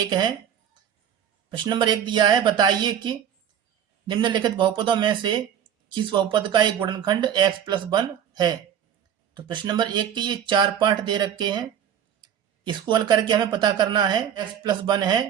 है। प्रश्न नंबर 1 दिया है, बताइए कि निम्नलिखित बहुपदों में से किस बहुपद का एक गुणनखंड x+1 है। तो प्रश्न नंबर 1 के ये 4 पार्ट दे रखे हैं। इसको हल करके हमें पता करना है x+1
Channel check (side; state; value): left; quieter; 9.2 dB